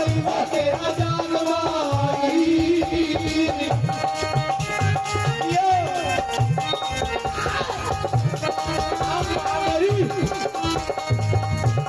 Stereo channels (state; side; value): identical; both; correlation 1.00